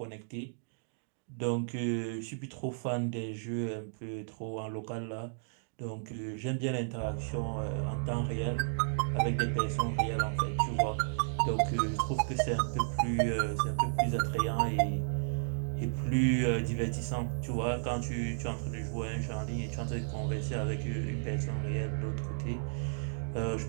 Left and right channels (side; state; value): left; silent; digital silence